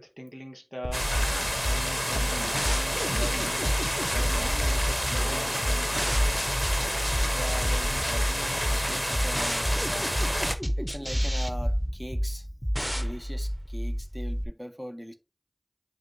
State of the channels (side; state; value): both; identical; correlation 1.00